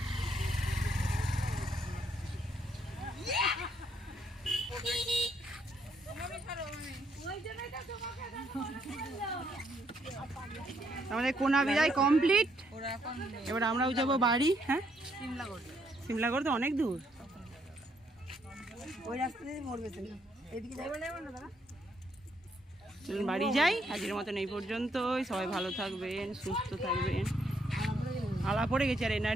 আমাদের কোনা বিদায় কমপ্লিট। এবার আমরাও যাবো বাড়ি। হ্যাঁ, সিমলাগড় তো অনেক দূর। চলুন বাড়ি যাই। আজকের মতন এই পর্যন্তই। সবাই ভালো থাকবেন, সুস্থ থাকবেন। আলা পড়ে গেছে, আর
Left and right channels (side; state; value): both; normal; correlation 0.72